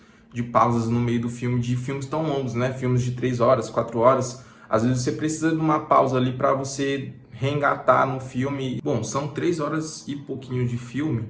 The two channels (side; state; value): both; identical; correlation 1.00